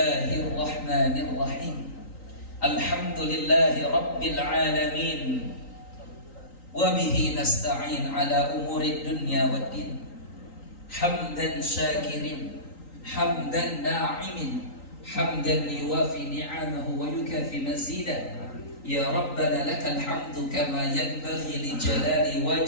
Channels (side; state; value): right; late; 3.9 ms